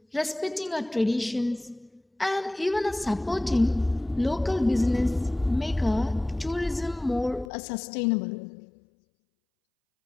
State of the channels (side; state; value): right; drops out; at 7.5 s